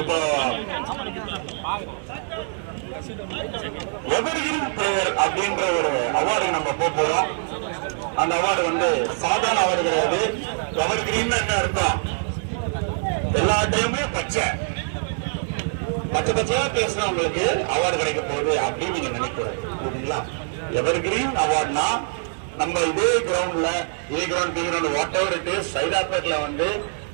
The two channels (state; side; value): silent; left; digital silence